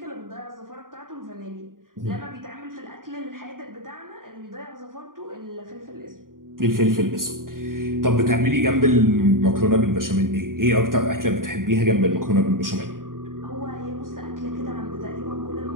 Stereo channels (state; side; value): late; left; 0.91 ms